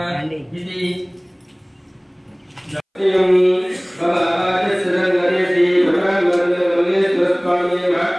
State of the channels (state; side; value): identical; both; correlation 1.00